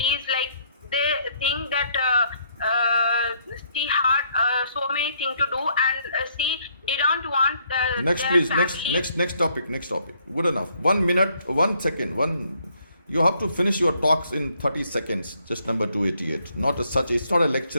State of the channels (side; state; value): both; inverted; correlation -0.68